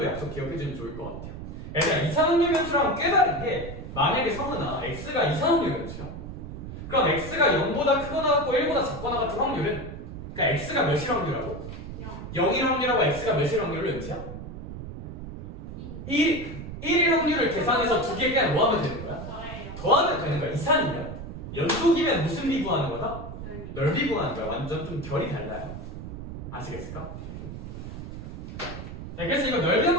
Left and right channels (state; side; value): noise; right; rumble, 9 dB below the sound